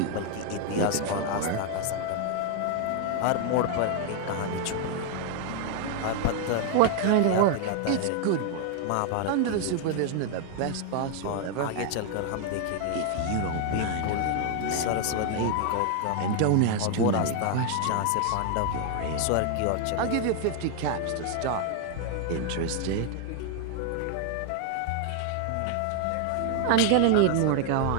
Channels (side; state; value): both; different; correlation 0.00